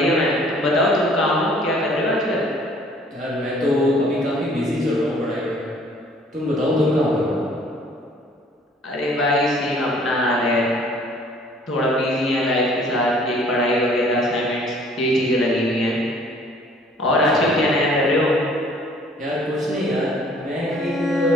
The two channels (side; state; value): both; normal; correlation 0.56